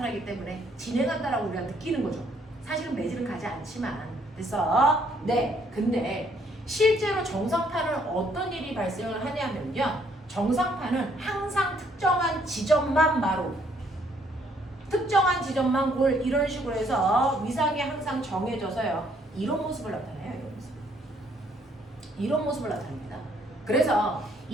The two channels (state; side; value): normal; both; correlation 0.67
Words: 때문에 진행한다라고 우리가 느끼는 거죠. 사실은 매질은 가지 않지만 근데 실제로 정상파는 어떤 일이 발생을 하냐면요. 정상파는 항상 특정한 지점만 마루 특정한 지점만 골 이런 식으로 해서 위상이 항상 정해져서요. 이런 모습을 나타내요. 이런 모습을 나타냅니다. 그래서